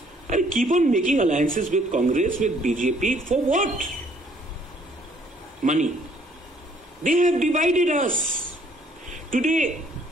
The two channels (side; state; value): both; normal; correlation 0.63